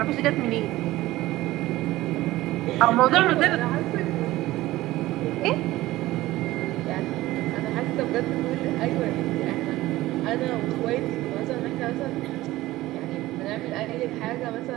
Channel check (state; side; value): quieter; left; 17.1 dB